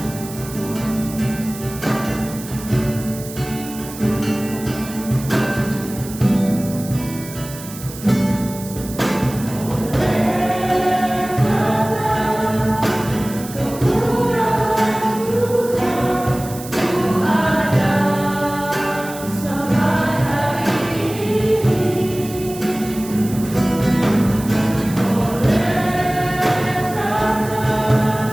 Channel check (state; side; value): noise; right; hiss, 14 dB below the sound